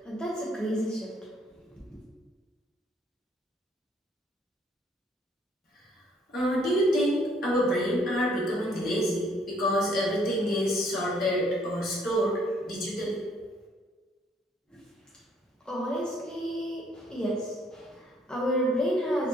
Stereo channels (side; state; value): both; normal; correlation 0.64